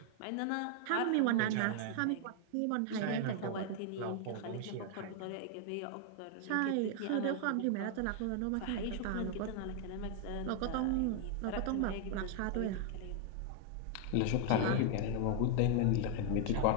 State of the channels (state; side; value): different; both; correlation 0.00